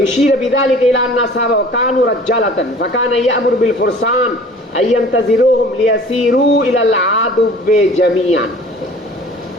ইউশিরা বিযালিকা ইলা আন্না আসহাবা কানু রাজ্জালাতান ফাকানা ইয়ামুরু বিল ফুরসান আইয়ান্তাজিরুহুম লিয়াসিরু ইলাল আদুবে জামিয়ান।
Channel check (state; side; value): normal; both; correlation 0.47